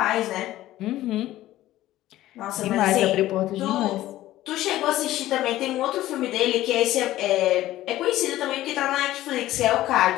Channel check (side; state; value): right; quieter; 15.0 dB